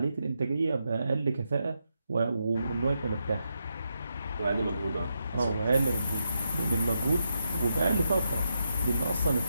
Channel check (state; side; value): inverted; both; correlation -0.83